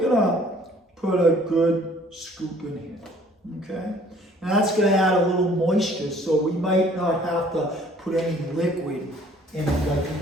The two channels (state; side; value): normal; both; correlation 0.56